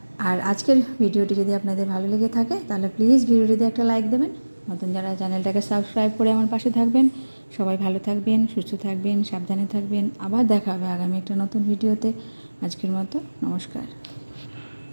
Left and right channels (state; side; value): inverted; both; correlation -1.00